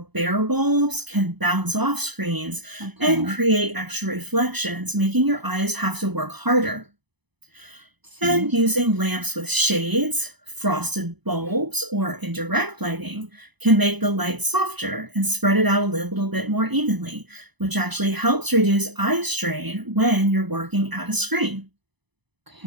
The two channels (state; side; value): late; left; 0.99 ms